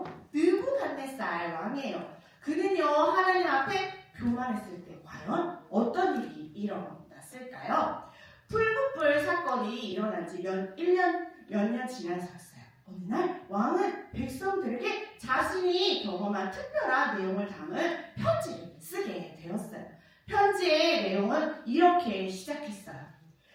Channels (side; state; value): both; identical; correlation 1.00